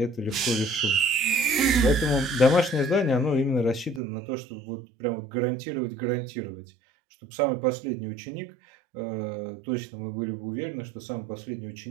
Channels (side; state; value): left; drops out; at 4.0 s